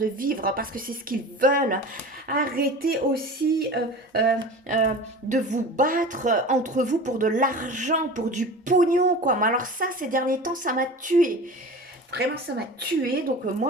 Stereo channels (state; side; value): normal; both; correlation 0.35